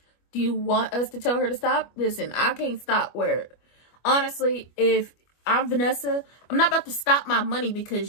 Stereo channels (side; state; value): right; late; 25 ms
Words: Do you want us to tell her to stop? Listen, I can't stop where, honestly, if I'm Vanessa, I'm not about to stop my money